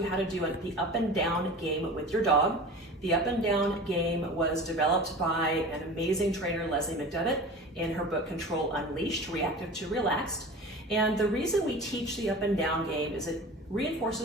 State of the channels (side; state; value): both; normal; correlation 0.36